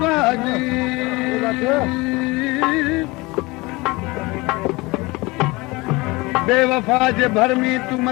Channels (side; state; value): right; quieter; 23.3 dB